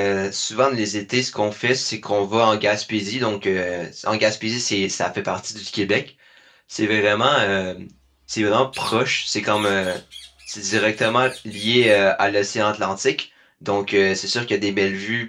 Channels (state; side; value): identical; both; correlation 1.00